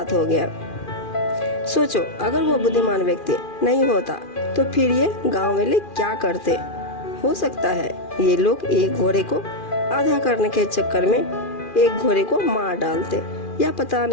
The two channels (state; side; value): late; right; 2.4 ms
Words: हो गया। सोचो, अगर वो बुद्धिमान व्यक्ति नहीं होता तो फिर ये गांव वाले क्या करते। हो सकता है ये लोग 1 घोड़े को आधा करने के चक्कर में 1 घोड़े को मार डालते, या पता